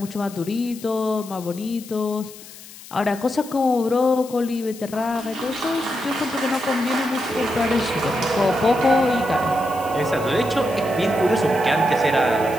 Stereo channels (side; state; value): left; noise; hiss, 17 dB below the sound